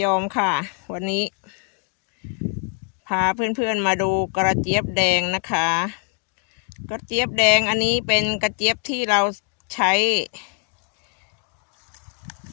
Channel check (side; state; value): right; quieter; 36.2 dB